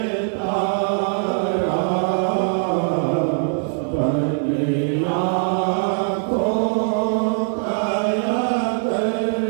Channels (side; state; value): left; silent; digital silence